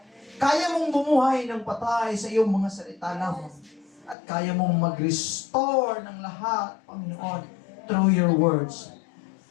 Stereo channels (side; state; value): right; drops out; at 4.2 s